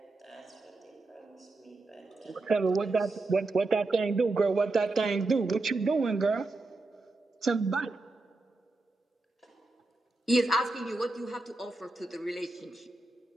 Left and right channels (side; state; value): left; quieter; 3.1 dB